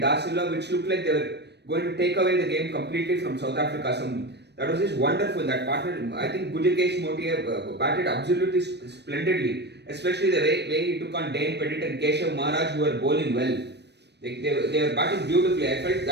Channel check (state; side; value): late; left; 0.49 ms